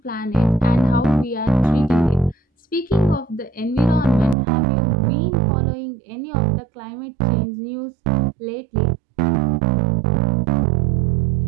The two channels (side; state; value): left; drops out; at 4.4 s